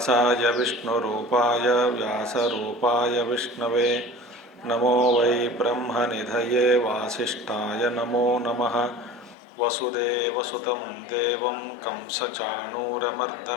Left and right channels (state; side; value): drops out; right; at 9.3 s